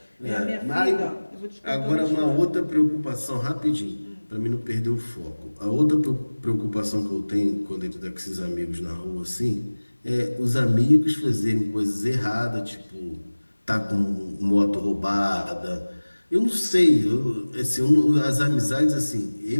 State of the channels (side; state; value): both; inverted; correlation -1.00